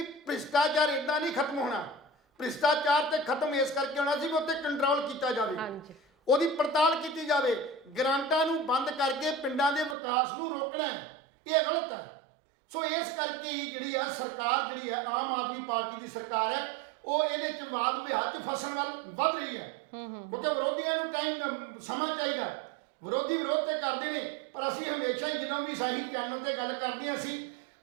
ਭ੍ਰਿਸ਼ਟਾਚਾਰ ਇੱਦਾਂ ਨਹੀਂ ਖਤਮ ਹੋਣਾ, ਭ੍ਰਿਸ਼ਟਾਚਾਰ ਤੇ ਖਤਮ ਇਸ ਕਰਕੇ ਹੋਣਾ ਸੀ ਵੀ ਉੱਤੇ ਕੰਟਰੋਲ ਕੀਤਾ ਜਾਵੇ, ਉਹਦੀ ਪੜਤਾਲ ਕੀਤੀ ਜਾਵੇ, ਗ੍ਰਾਂਟਾਂ ਨੂੰ ਬੰਦ ਕਰਕੇ ਪਿੰਡਾਂ ਦੇ ਵਿਕਾਸ ਨੂੰ ਰੋਕਣਾ। ਇਹ ਗਲਤ ਹੈ। ਸੋ ਇਸ ਕਰਕੇ ਹੀ ਜਿਹੜੀ ਆ ਸਰਕਾਰ ਜਿਹੜੀ ਹੈ ਆਮ ਆਦਮੀ ਪਾਰਟੀ ਦੀ ਸਰਕਾਰ ਹੈ, ਉਹ ਇਹਦੇ 'ਚ ਵਾਦ ਵਿਵਾਦ 'ਚ ਫਸਣ ਵੱਲ ਵੱਧ ਰਹੀ ਹੈ। ਕਿਉਂਕਿ ਵਿਰੋਧੀਆਂ ਨੂੰ ਸਮਾਂ ਚਾਹੀਦਾ, ਵਿਰੋਧ ਤੇ ਕਰਦੇ ਨੇ, ਪਰ ਅਸੀਂ ਹਮੇਸ਼ਾ ਹੀ ਜਦੋਂ ਵੀ ਸਹੀ ਚੈਨਲ ਤੇ ਗੱਲ ਕਰਦੇ ਹਾਂ ਅਸੀਂ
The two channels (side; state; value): left; drops out; at 10.0 s